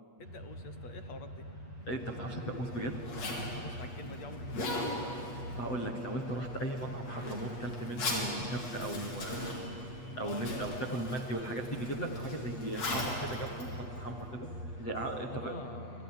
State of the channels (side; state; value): right; late; 8.3 ms